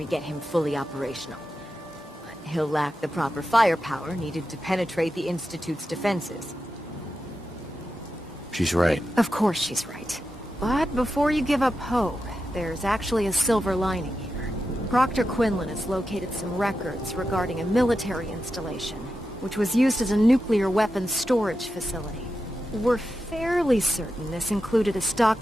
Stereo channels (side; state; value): both; normal; correlation 0.89